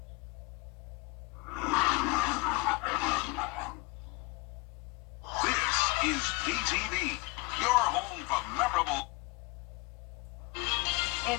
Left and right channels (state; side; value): quieter; right; 24.1 dB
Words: This is WJBF, your home for memorable.